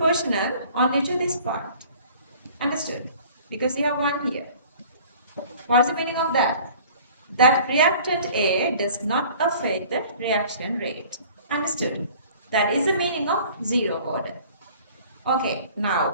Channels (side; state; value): both; inverted; correlation -0.49